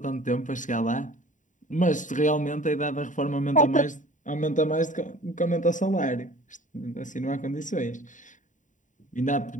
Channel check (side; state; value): right; late; 0.37 ms